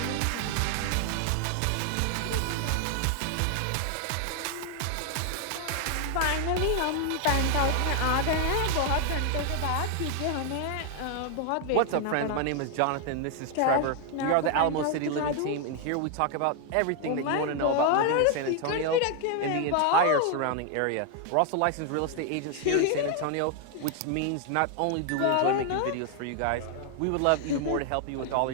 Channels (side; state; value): both; different; correlation 0.00